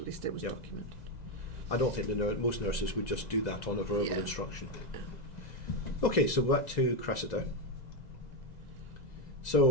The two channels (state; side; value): late; right; 2.0 ms